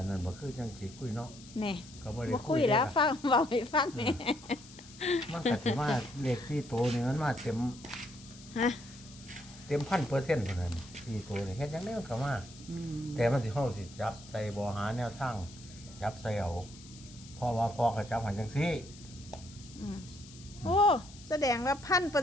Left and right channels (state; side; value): noise; left; hiss, 19 dB below the sound